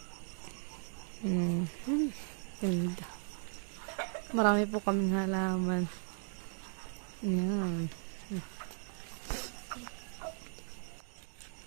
Ganda. Marami po kaming halaman. Yan.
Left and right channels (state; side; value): silent; left; 53 dB below the other